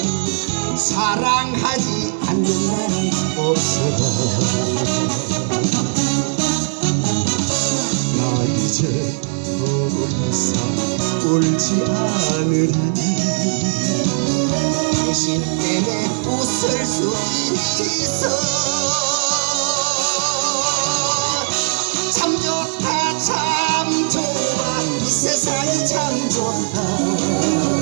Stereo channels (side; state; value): left; silent; 67 dB below the other